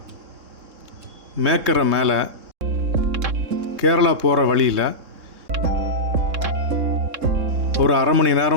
மேக்கரை மேலே கேரளா போகிற வழியில் ஒரு அரை மணி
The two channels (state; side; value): late; left; 3.7 ms